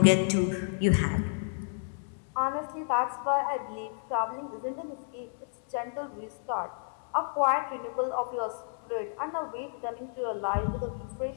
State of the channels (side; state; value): right; silent; 57 dB below the other